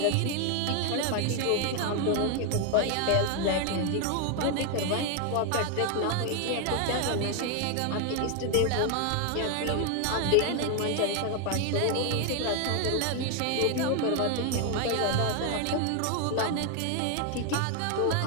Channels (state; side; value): different; both; correlation 0.01